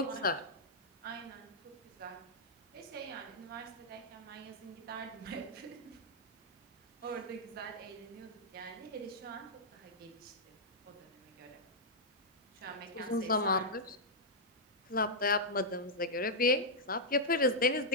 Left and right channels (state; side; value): normal; both; correlation -0.07